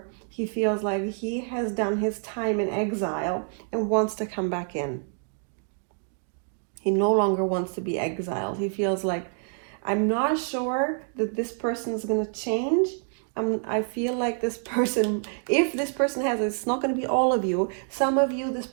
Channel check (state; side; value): silent; left; 57 dB below the other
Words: He feels like he has done his time in exile and wants to come back in. He no longer wants to be exiled. He feels like, I'm not sure that this person is going to change. I feel like this person, if this person has, it's not going to be all of you. Some of you, this